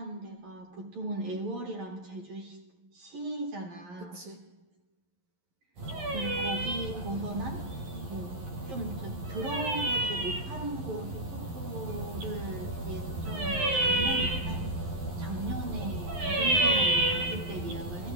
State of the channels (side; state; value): left; late; 11 ms